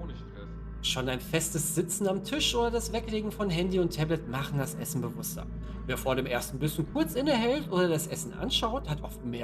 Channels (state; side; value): identical; both; correlation 1.00